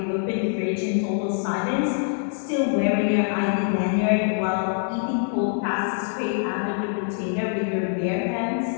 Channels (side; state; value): right; silent; 62 dB below the other